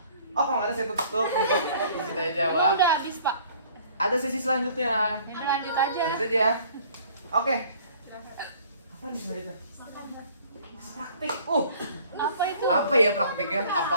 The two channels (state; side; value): inverted; both; correlation -0.54